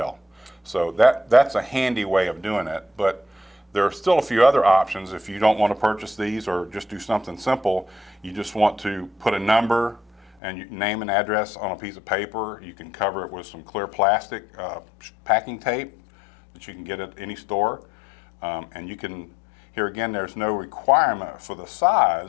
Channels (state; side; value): drops out; right; at 10.4 s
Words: So that's a handy way of doing it, but there are still a few other options. If you don't want to purchase these or just do something simple, you just want to put a number and your name and address on a piece of paper. You can cover it with some clear plastic packing tape that you can get at any store. And you can, here again, there's no requirement for the